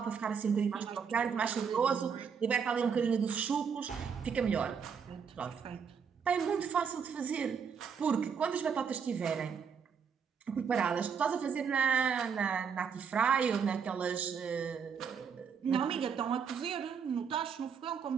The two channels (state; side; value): quieter; left; 6.6 dB